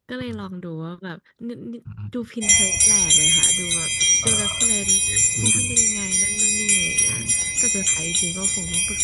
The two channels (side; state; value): both; identical; correlation 1.00